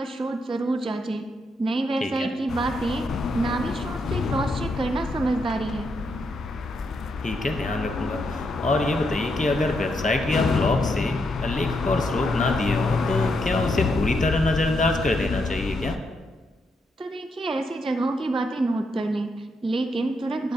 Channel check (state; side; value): normal; both; correlation 0.80